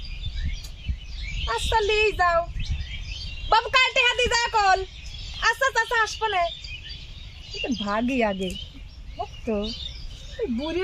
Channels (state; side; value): identical; both; correlation 1.00